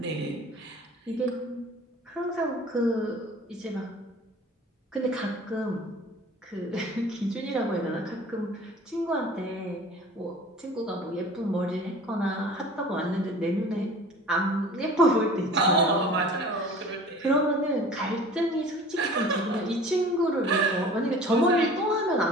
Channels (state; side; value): normal; both; correlation 0.44